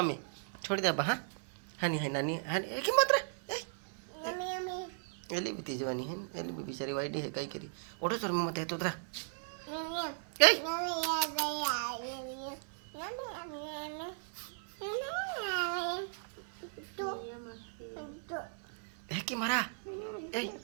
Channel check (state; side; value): silent; left; 53 dB below the other